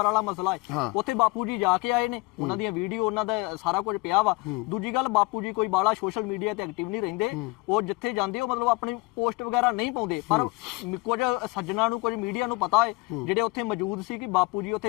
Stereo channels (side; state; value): right; quieter; 24.5 dB